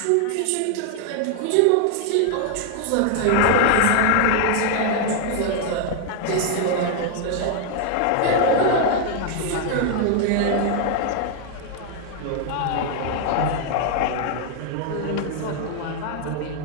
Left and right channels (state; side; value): different; both; correlation 0.00